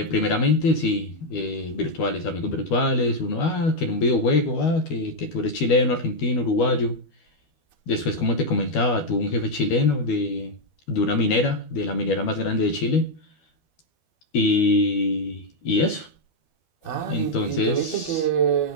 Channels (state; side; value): late; right; 12 ms